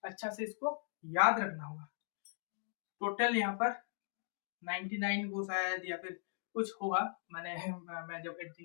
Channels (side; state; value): right; silent; digital silence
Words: अच्छा से इसको याद रखना होगा। टोटल यहाँ पर 99 को शायद या फिर कुछ होगा, मैं जब